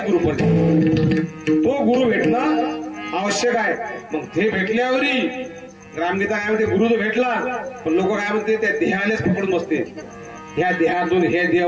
गुरु पर तो गुरु भेटणं आवश्यक आहे। मग ते भेटल्यावरी ग्रामगीता काय म्हणते, गुरु तो भेटला पण लोक काय म्हणते त्या देहालेच पकडून बसते। ह्या देहातून हे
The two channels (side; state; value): both; identical; correlation 1.00